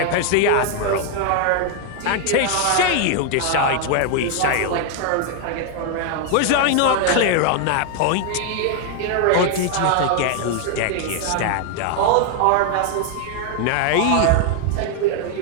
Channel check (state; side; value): different; both; correlation 0.00